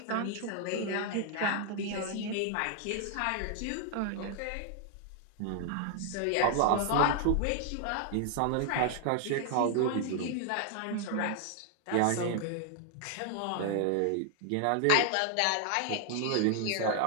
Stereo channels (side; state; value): both; different; correlation 0.00